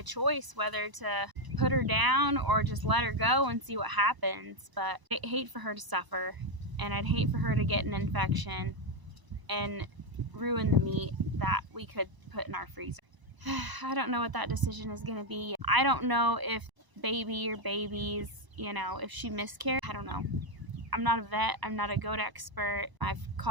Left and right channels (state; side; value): late; left; 1.0 ms